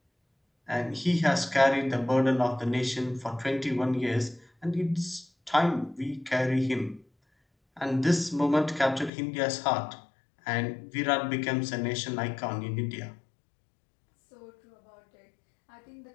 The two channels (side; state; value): right; drops out; at 9.1 s